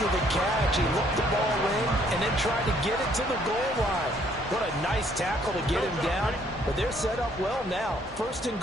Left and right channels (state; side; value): normal; both; correlation 0.65